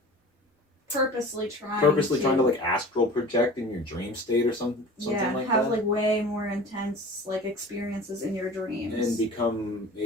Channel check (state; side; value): normal; both; correlation 0.40